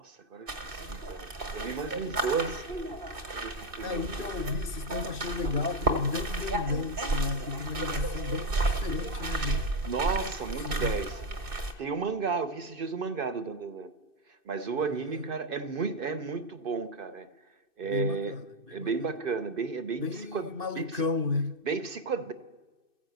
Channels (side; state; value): left; late; 2.6 ms